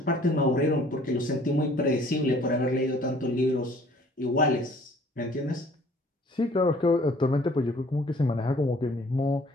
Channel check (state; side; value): normal; both; correlation 0.55